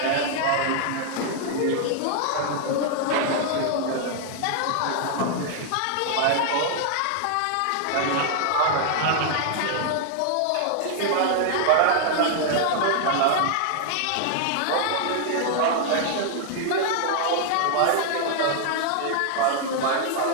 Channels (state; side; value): different; both; correlation 0.00